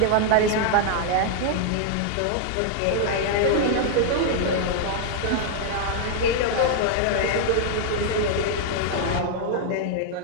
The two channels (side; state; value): both; different; correlation 0.00